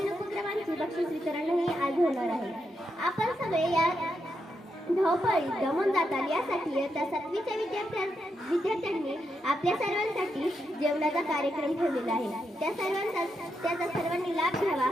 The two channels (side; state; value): both; normal; correlation 0.83